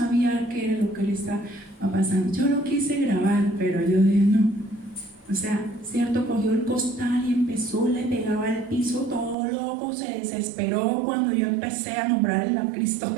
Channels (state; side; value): drops out; left; at 9.3 s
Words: qué era lo que le estaba pasando. Yo lo quise grabar, pero yo dije no. O sea, cierto, cogió el costal y empezó, le pegaba al piso todo loco, se desesperó cuando yo empecé a nombrarle a Cristo